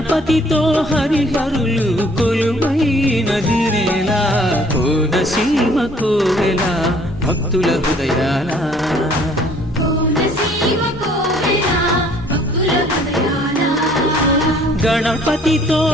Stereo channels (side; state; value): both; normal; correlation 0.58